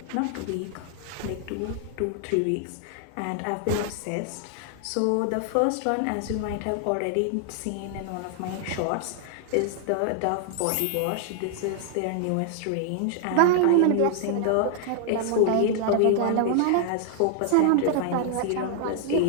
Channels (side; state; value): both; different; correlation 0.00